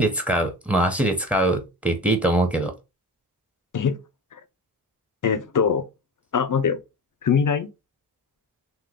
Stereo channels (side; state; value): both; normal; correlation 0.31